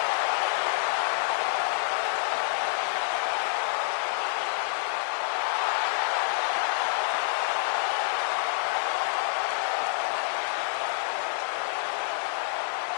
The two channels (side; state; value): right; silent; digital silence